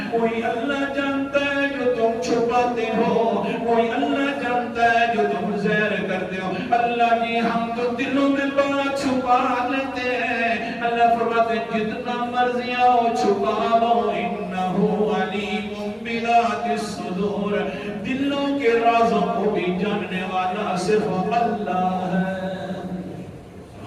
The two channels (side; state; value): both; identical; correlation 1.00